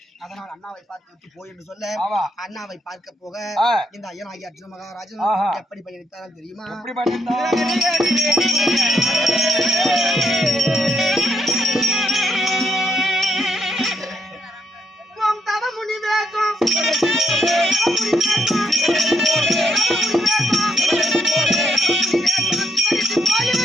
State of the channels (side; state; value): both; normal; correlation 0.75